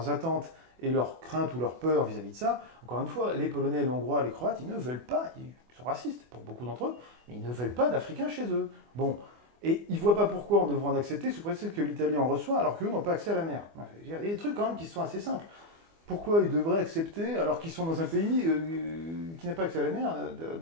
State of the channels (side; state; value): left; late; 24 ms